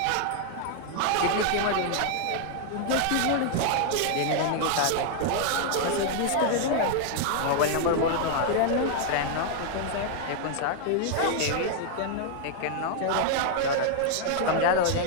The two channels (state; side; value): different; both; correlation 0.00